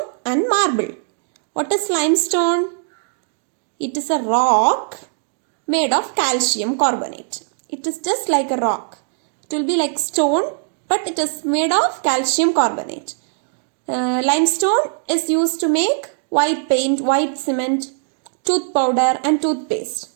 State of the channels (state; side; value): silent; left; digital silence